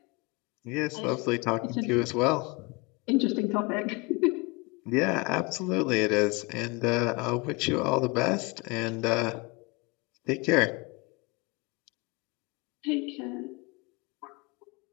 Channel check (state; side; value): quieter; right; 26.9 dB